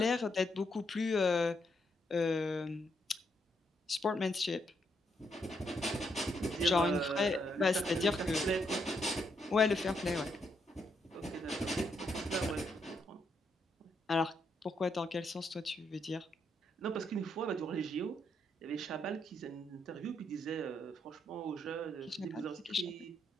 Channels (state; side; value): normal; both; correlation 0.77